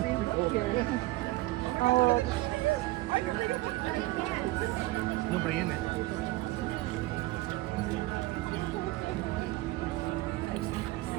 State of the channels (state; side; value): quieter; left; 19.1 dB